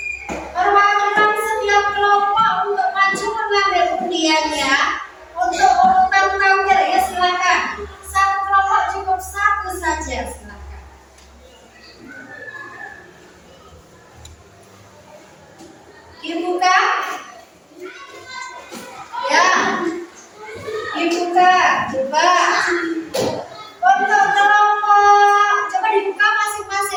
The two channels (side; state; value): both; identical; correlation 1.00